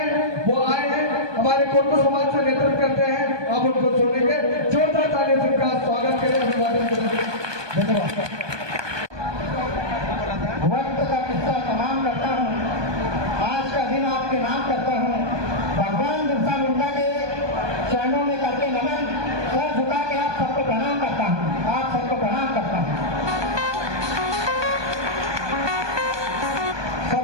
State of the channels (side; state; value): left; late; 1.2 ms